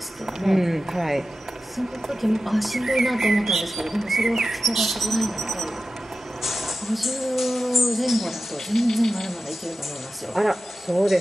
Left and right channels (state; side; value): normal; both; correlation 0.94